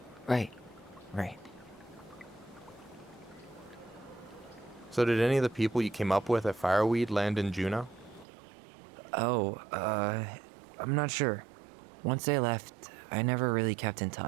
Right. So did any of the people you came up with at Fireweed land in Juneau? Oh, I'm not sure. Once they left, I never really kept in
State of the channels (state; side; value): drops out; left; at 8.2 s